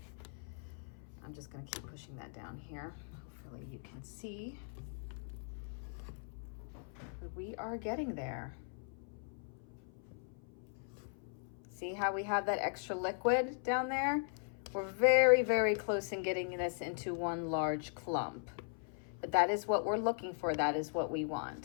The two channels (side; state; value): right; silent; 52 dB below the other